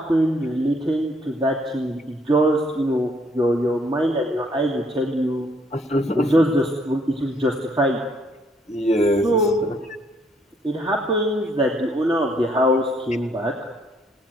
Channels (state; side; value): normal; both; correlation 0.67